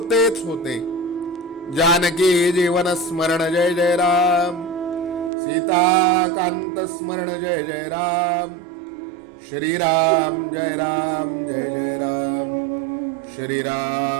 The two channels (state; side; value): drops out; left; at 5.3 s